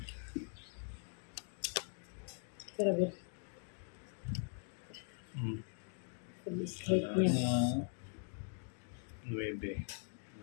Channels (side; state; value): right; silent; 50 dB below the other